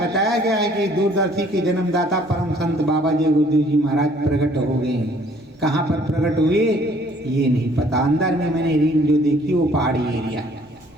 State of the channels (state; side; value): normal; both; correlation 0.59